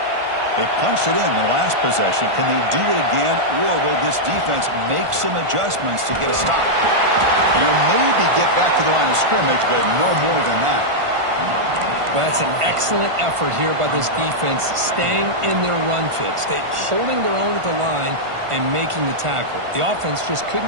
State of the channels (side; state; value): left; late; 1.5 ms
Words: They punched it in the last possession. Can they do it again, or will this defense make some adjustments to get a stop? And you'll maybe get back to the line of scrimmage, but no more than that. Well, that's an excellent effort here by this defense, staying in their run fits, holding their own at the line and making the tackle. The offense just